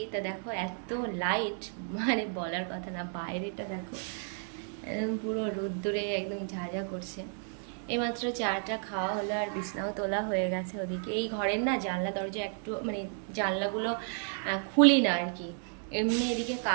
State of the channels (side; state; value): left; silent; 56 dB below the other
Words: তা দেখো এত লাইট, মানে বলার কথা না। বাইরেটা দেখো একদম পুরো রোদ্দুরে একদম ঝাঁঝা করছে। এইমাত্র চাটা খাওয়া হলো আর বিছনাও তোলা হয়ে গেছে ওদিকে। এই ঘরের না জানলা দরজা একটু মানে জানলাগুলো খুলি না আর কি। এমনি এদিকে